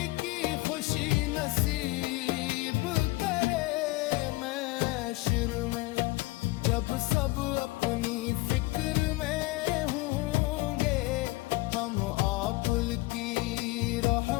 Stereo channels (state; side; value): quieter; right; 21.1 dB